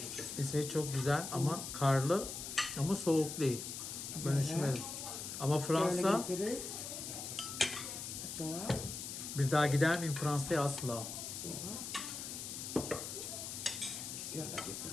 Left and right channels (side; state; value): left; noise; hiss, 7 dB below the sound